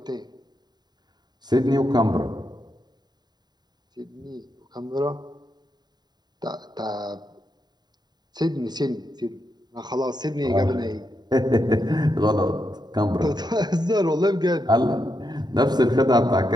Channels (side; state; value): left; late; 0.20 ms